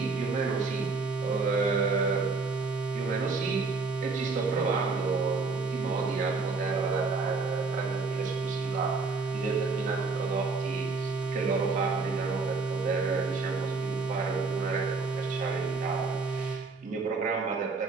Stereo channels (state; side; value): quieter; left; 4.2 dB